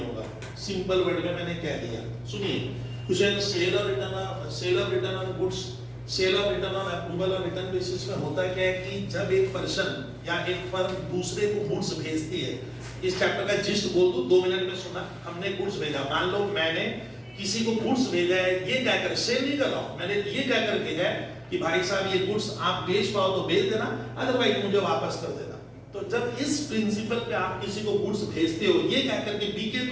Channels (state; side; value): identical; both; correlation 1.00